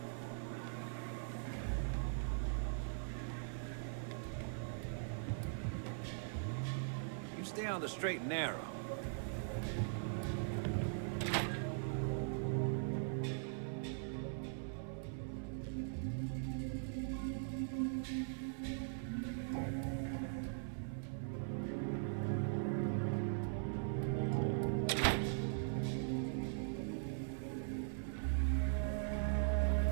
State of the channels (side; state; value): left; silent; 50 dB below the other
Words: You stay on the straight and narrow.